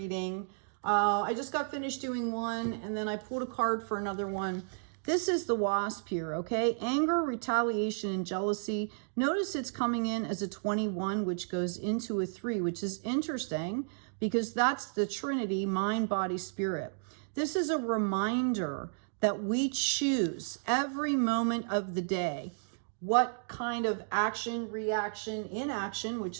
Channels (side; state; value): left; silent; digital silence